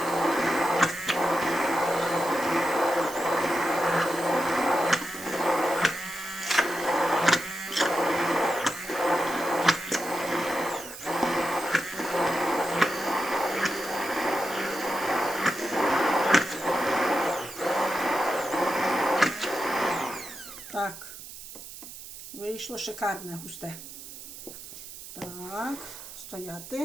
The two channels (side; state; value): right; noise; hiss, 13 dB below the sound